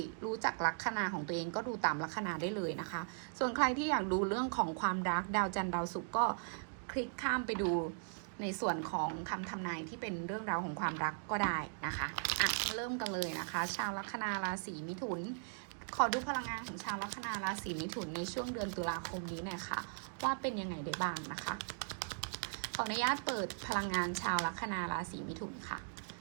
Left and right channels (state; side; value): silent; left; digital silence